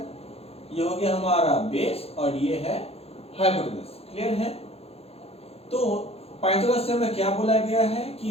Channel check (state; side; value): late; right; 0.29 ms